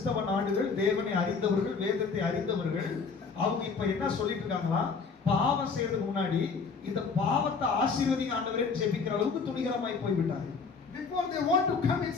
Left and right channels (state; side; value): quieter; right; 5.0 dB